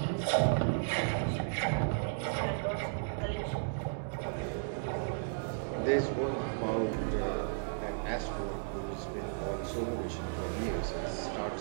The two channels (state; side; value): silent; left; digital silence